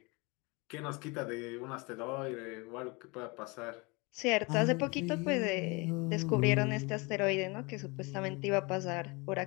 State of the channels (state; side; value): quieter; right; 27.6 dB